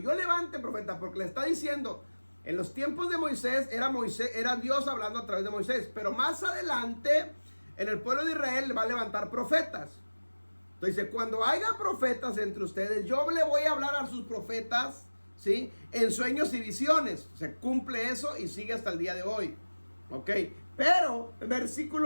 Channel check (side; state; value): both; inverted; correlation -1.00